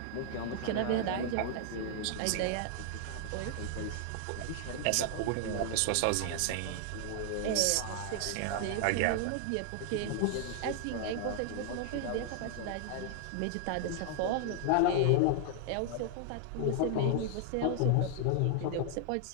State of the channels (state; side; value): different; both; correlation 0.00